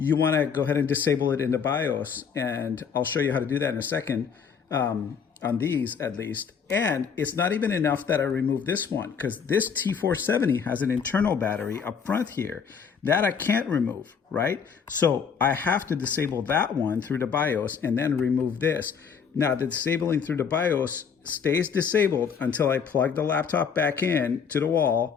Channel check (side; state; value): right; quieter; 6.6 dB